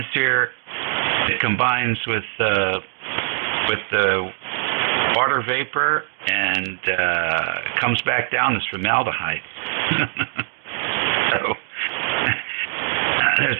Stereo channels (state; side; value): silent; left; digital silence